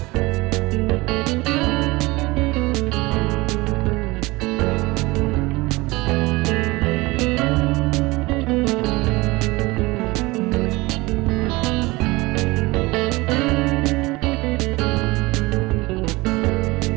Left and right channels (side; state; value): left; quieter; 22.2 dB